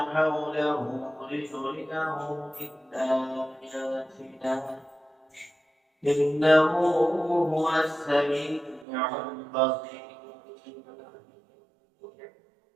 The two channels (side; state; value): left; drops out; at 8.8 s